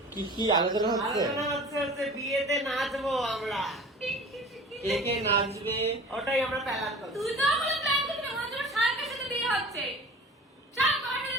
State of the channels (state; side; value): normal; both; correlation 0.41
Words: কি আলোচনা হচ্ছে? বিয়েতে নাচবো আমরা। কে কে নাচবে ওটাই আমরা প্ল্যান করছি। তুই তো আমাদের প্ল্যান করছিস, আমাদের শাহেকের সাথে বিয়ে হচ্ছে। শাহেক তোমাকে